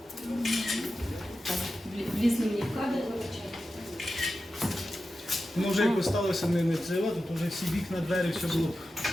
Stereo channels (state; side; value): normal; both; correlation 0.92